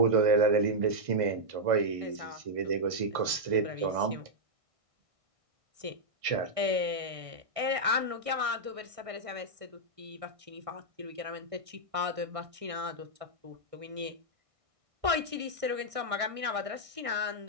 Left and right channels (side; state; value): left; late; 1.6 ms